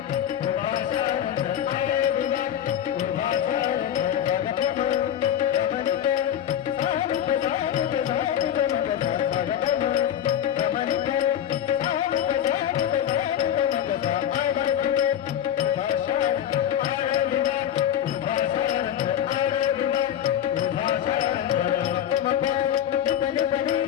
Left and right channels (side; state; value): right; quieter; 10.3 dB